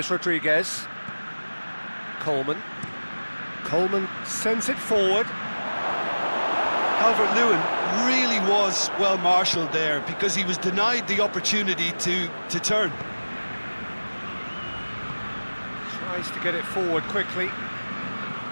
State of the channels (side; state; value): both; inverted; correlation -1.00